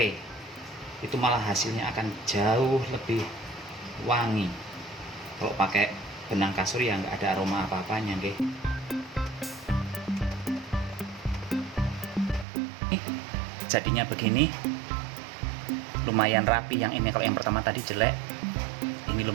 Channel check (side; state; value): left; drops out; at 12.5 s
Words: Itu malah hasilnya akan jauh lebih wangi. Kalau pakai benang kasur ya nggak ada aroma apa-apanya, nggih. Jadinya begini. Lumayan rapi. Yang ini kalau yang pertama tadi jelek, ini